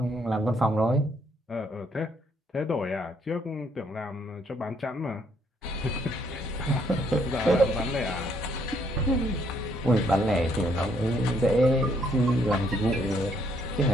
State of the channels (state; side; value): normal; both; correlation 0.69